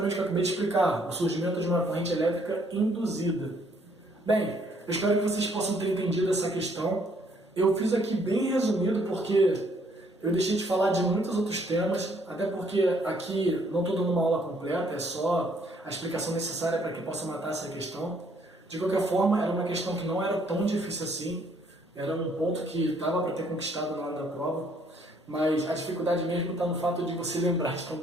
o que eu acabei de explicar, o surgimento de uma corrente elétrica induzida. Bem, eu espero que vocês possam ter entendido essa questão. Eu fiz aqui bem resumido porque Eu deixei de falar de muitos outros temas, até porque aqui não estou dando uma aula completa, é só a explicação necessária para que possa matar essa questão. De qualquer forma, era uma questão que não era tão difícil assim, era um ponto que dava para ter conquistado na hora da prova, mas a dificuldade mesmo está no fato de você lembrar de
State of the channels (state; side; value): normal; both; correlation 0.66